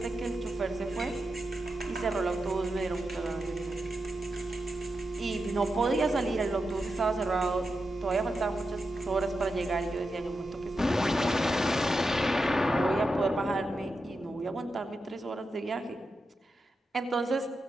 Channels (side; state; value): both; normal; correlation 0.88